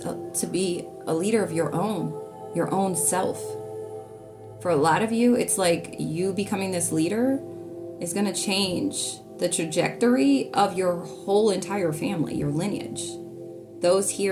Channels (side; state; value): both; identical; correlation 1.00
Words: be a leader of your own self. For a lot of you, it's like you becoming this leader is going to change the trajectory of your whole entire family, your lineage. Those